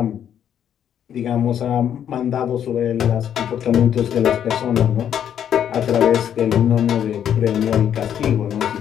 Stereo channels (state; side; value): quieter; right; 9.4 dB